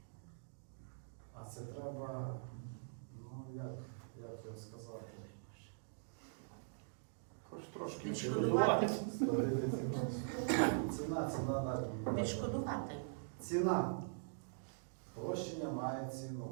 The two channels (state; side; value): silent; left; digital silence